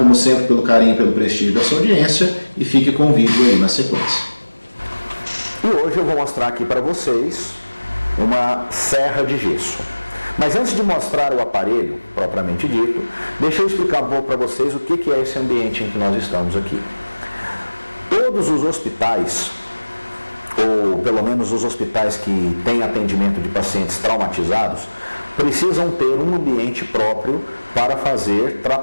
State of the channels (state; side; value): inverted; both; correlation -1.00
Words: sempre, pelo carinho e pelo prestígio da sua audiência e fique com o vídeo aí na sequência. E hoje eu vou mostrar aqui para vocês uma serra de gesso. Mas antes de mostrar o aparelho, propriamente dito, deixa eu explicar um pouco para vocês o que é esse ambiente em que nós estamos aqui. Todos os hospitais, ou pelo menos os hospitais que têm atendimento de pacientes traumatizados, precisam ter um ambiente próprio para fazer